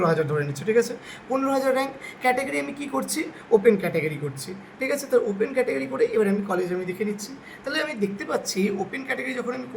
ধরে নিচ্ছি, ঠিক আছে? 15,000 র্যাঙ্ক ক্যাটাগরি আমি কী করছি, ওপেন ক্যাটাগরি করছি, ঠিক আছে? তো ওপেন ক্যাটাগরি করে এবার আমি কলেজ আমি দেখে নিচ্ছি। তাহলে আমি দেখতে পাচ্ছি ওপেন ক্যাটাগরি যখন আমি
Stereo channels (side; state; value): both; identical; correlation 1.00